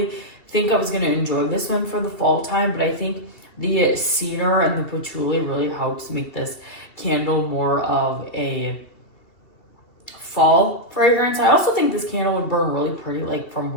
think I was going to enjoy this one for the fall time, but I think the cedar and the patchouli really helps make this candle more of a fall fragrance. I also think this candle would burn really pretty like from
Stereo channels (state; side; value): late; right; 2.7 ms